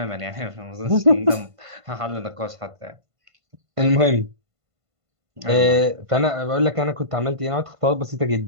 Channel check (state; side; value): late; left; 1.5 ms